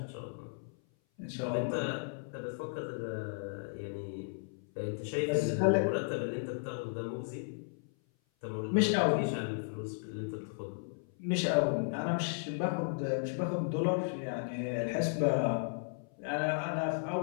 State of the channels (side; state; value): right; silent; 55 dB below the other